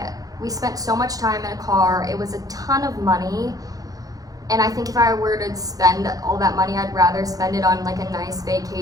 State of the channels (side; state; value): left; late; 0.17 ms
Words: We spent so much time in a car. It was a ton of money. And I think if I were to spend all that money, I'd rather spend it on like a nice